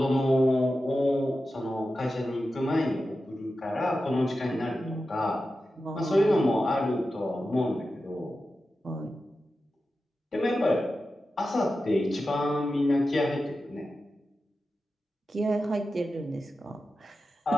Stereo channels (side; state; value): both; normal; correlation 0.92